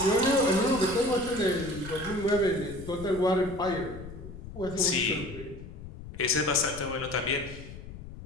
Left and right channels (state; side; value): noise; left; rumble, 13 dB below the sound